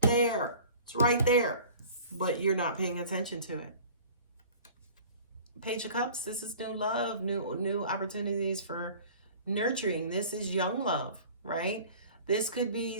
It's right there, but you're not paying attention to it. Page of Cups, this is new love, new opportunities for nurturing. This is young love, right? This could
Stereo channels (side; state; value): both; inverted; correlation -0.45